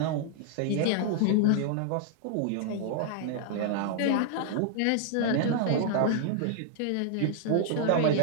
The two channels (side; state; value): both; different; correlation -0.01